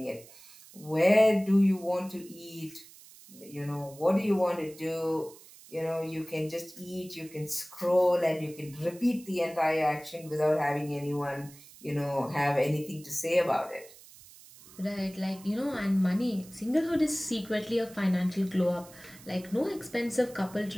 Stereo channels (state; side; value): noise; right; hiss, 21 dB below the sound